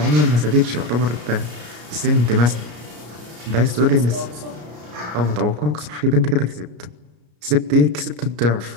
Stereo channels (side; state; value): left; late; 33 ms